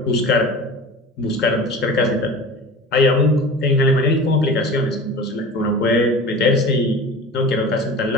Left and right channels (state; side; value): normal; both; correlation 0.36